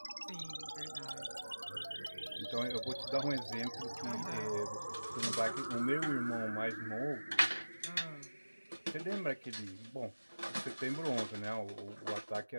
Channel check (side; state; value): both; inverted; correlation -1.00